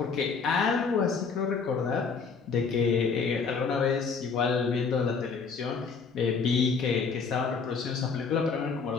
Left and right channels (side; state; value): right; quieter; 5.3 dB